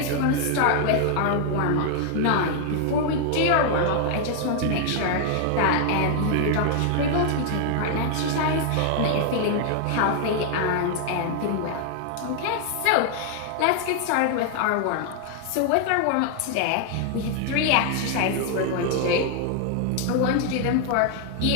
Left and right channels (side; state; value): both; different; correlation 0.00